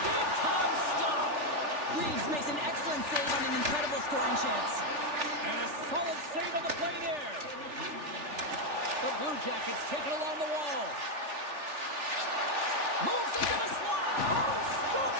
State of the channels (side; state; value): left; late; 3.4 ms